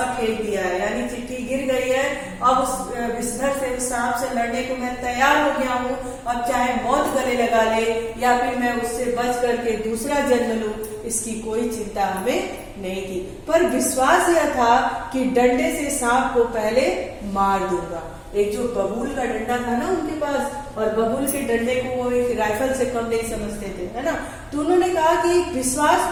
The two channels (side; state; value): both; identical; correlation 1.00